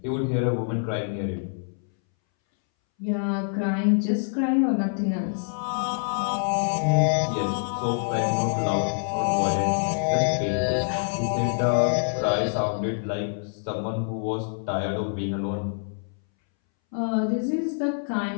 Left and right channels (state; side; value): silent; right; 61 dB below the other